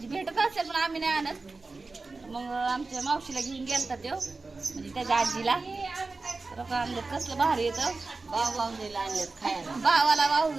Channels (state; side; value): quieter; left; 3.7 dB